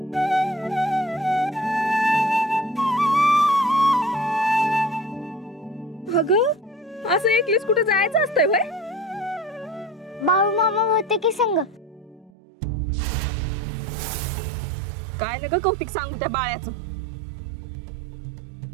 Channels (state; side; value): drops out; left; at 12.3 s